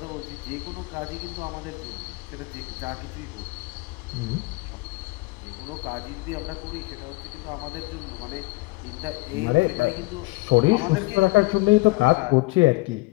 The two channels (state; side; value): quieter; right; 23.3 dB